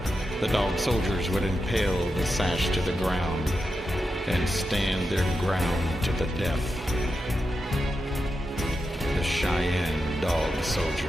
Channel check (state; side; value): normal; both; correlation 0.88